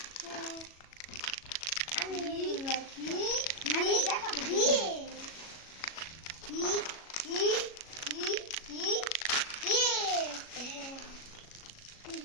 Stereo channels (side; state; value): right; late; 37 ms